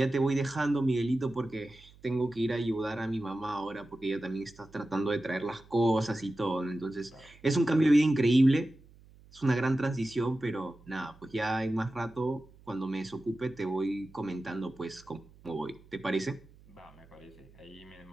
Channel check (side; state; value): right; noise; hum, 25 dB below the sound